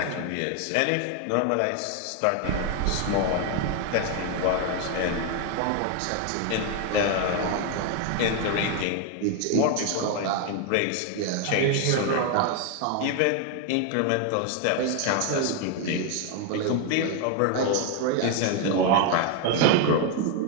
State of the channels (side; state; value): both; different; correlation 0.01